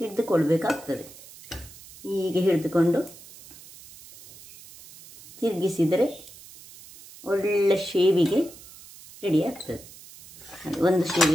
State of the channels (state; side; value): noise; right; hiss, 19 dB below the sound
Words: ಹೀಗೆ ಹಿಡಿದುಕೊಂಡು ತಿರುಗಿಸಿದರೆ ಒಳ್ಳೆ ಶೇವಿಗೆ ರೆಡಿ ಆಗ್ತದೆ. ಒಂದು